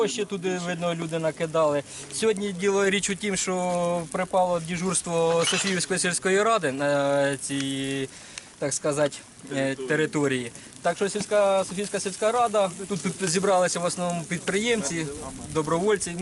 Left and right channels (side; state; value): both; identical; correlation 1.00